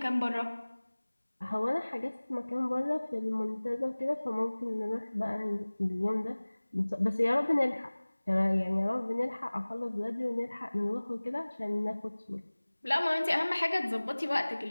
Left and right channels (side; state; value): both; inverted; correlation -1.00